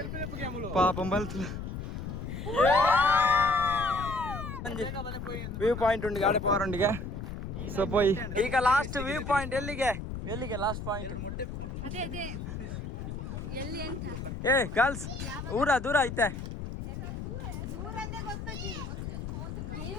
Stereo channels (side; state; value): left; noise; rumble, 6 dB below the sound